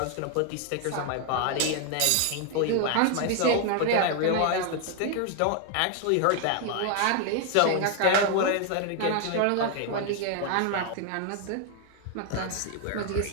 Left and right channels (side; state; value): both; different; correlation 0.00